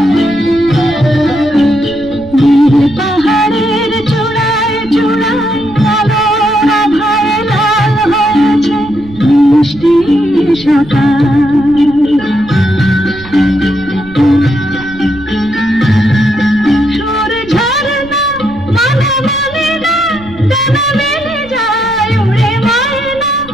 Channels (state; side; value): noise; right; rumble, 18 dB below the sound